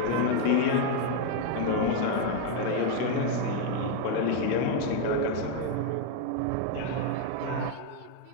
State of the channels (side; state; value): both; different; correlation 0.01